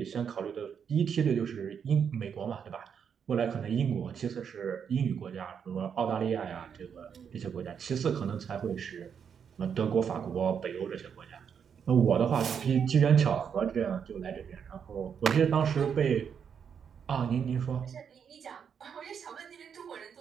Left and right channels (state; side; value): quieter; left; 7.3 dB